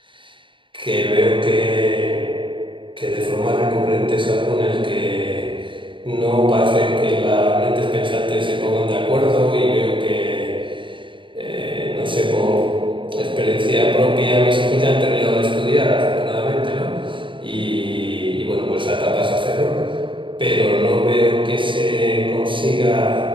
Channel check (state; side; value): late; left; 0.24 ms